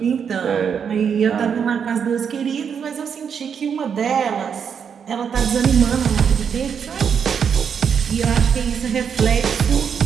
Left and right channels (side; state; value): left; quieter; 7.2 dB